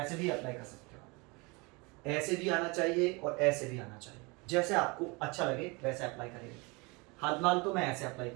भी अप्लाई कर सकते हो, ऐसे भी आना चाहिए और ऐसे भी आना चाहिए, जैसे आपको अच्छा लगे वैसे अप्लाई करिए। हाल तो मैं ऐसे अप्लाई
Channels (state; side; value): quieter; left; 27.4 dB